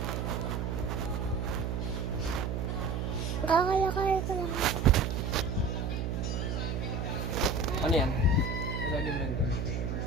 Kakalakay ko lang. Ano yan? Ilalim lang doon.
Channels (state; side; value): noise; right; hum, 1 dB below the sound